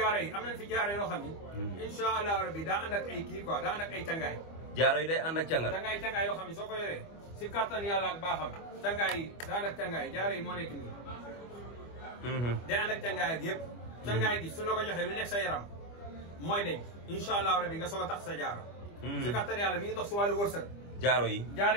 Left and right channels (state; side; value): late; right; 25 ms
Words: yi am nañ fi jaaro yoo xam ni insha allahu rabbi daa ànd ak ay kii quoi daa ànd ak ay cangaay jaaro yi day ànd ak cangat cangaay yoo xam ne soo ko yoree si kattan yàlla ak baaxam cangaay yi daa ànd ak cangaay jaaro yi moo nekk nii day ànd ak cangaay ak yëpp cangaay gi su la ko joxee lu nekk sa yaram mooy deñ insha allahu rabbi nga soog a tax sa jaaro si kattan yàlla mi ngi dox si wàllu wërsëg jaaro yi